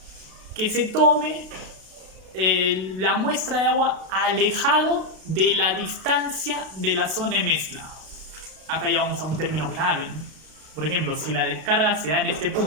que se tome la muestra de agua alejado de la distancia de la zona de mezcla. Acá ya vamos a un término clave, ¿no? Por ejemplo, si la descarga se da en este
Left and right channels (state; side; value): late; left; 32 ms